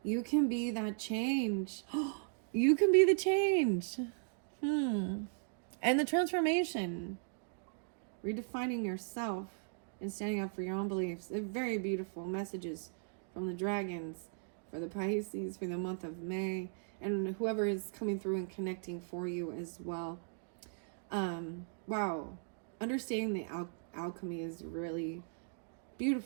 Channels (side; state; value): left; silent; digital silence